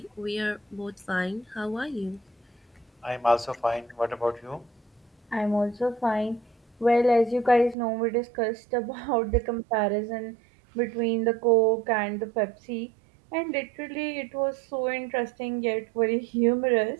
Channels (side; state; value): left; drops out; at 7.8 s